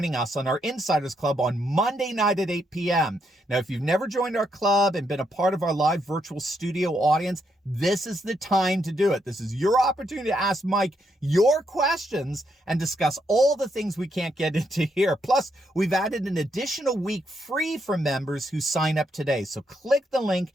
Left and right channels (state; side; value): normal; both; correlation 0.78